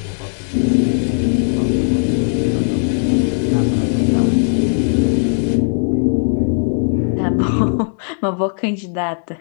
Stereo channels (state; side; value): silent; right; 68 dB below the other